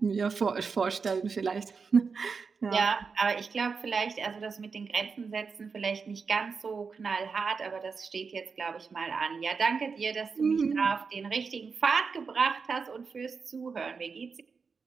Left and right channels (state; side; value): quieter; left; 5.2 dB